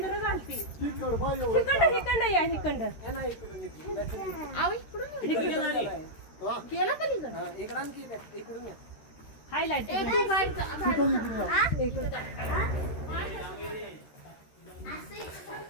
घालते. हिकंड या हिकंड गेला का इकडून हायलाइट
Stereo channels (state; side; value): late; right; 13 ms